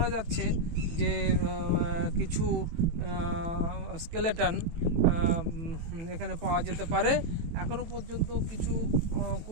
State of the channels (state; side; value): late; left; 18 ms